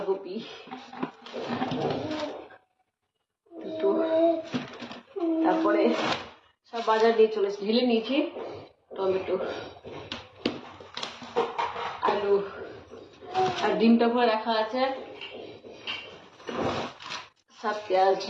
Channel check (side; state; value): both; identical; correlation 1.00